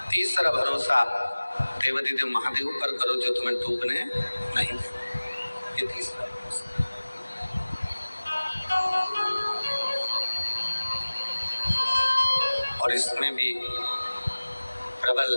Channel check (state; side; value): inverted; both; correlation -1.00